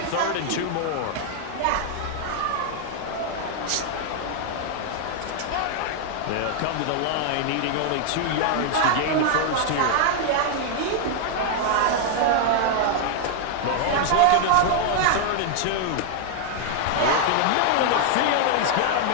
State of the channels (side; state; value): both; different; correlation 0.00